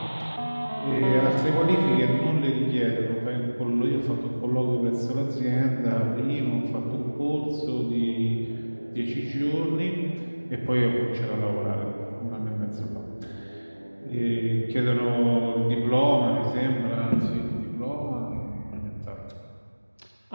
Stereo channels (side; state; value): both; inverted; correlation -1.00